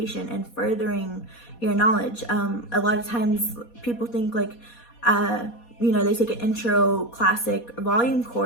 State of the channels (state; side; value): late; right; 4.2 ms